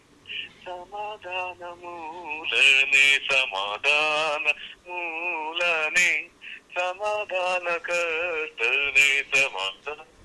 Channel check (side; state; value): both; identical; correlation 1.00